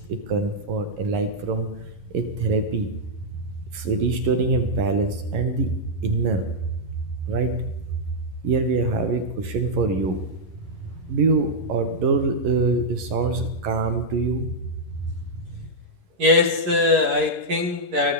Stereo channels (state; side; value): late; left; 11 ms